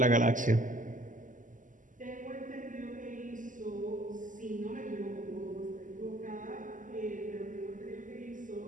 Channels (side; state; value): left; late; 0.38 ms